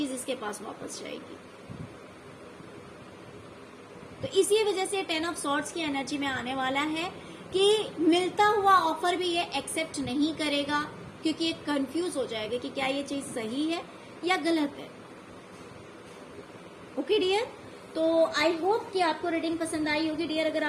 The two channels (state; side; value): identical; both; correlation 1.00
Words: इसके पास वापस जाएगी। तो इसी वजह से 10 ऑफ सॉर्ड्स की एनर्जी में आने वाला है कि मिलता हुआ ऑफर भी ये एक्सेप्ट नहीं करेगा, क्योंकि ये कंफ्यूज हो जाएगा कि क्या ये चीज सही है या गलत है। ओके डियर, तो आई होप कि आपको रीडिंग पसंद आई होगी डियर। अगर